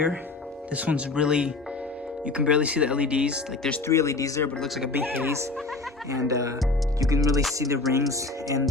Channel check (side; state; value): right; quieter; 3.4 dB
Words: this one's really, you can barely see the LEDs. Like, there's 3 LEDs there, but it looks like a big haze. And you can really see the rings and